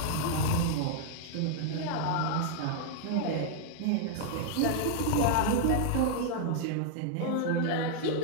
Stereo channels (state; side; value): different; both; correlation -0.01